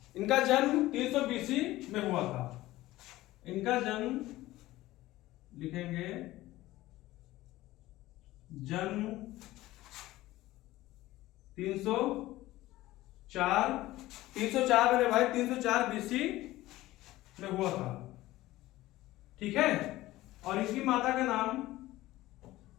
इनका जन्म 300 बीसी में हुआ था। इनका जन्म लिखेंगे जन्म 304 मेरे भाई 304 बीसी में हुआ था, ठीक है। और इनकी माता का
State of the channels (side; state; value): right; quieter; 17.0 dB